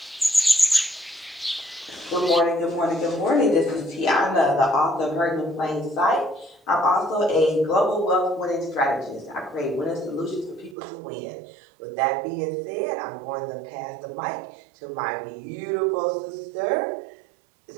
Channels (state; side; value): drops out; left; at 10.8 s